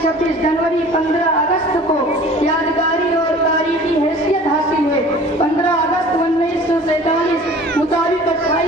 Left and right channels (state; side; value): normal; both; correlation 0.46